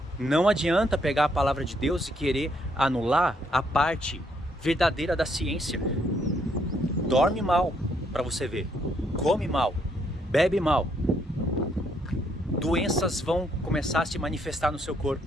Não adianta pegar a palavra de Deus e querer anular a parte verdadeira da ciência. Dorme mal para você ver, come mal, bebe mal. Doenças vão começar a se manifestar no seu corpo.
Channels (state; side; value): normal; both; correlation 0.72